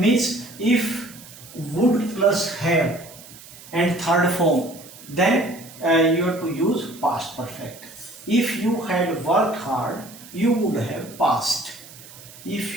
if would plus have and third form, then you have to use past perfect. If you had worked hard, you would have passed.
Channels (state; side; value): noise; right; hiss, 19 dB below the sound